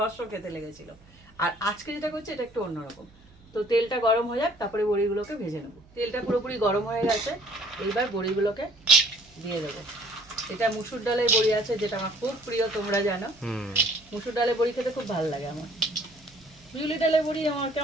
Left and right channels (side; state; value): right; noise; hum, 27 dB below the sound